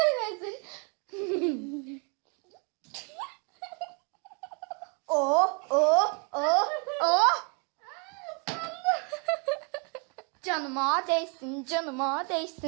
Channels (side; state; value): left; quieter; 36.0 dB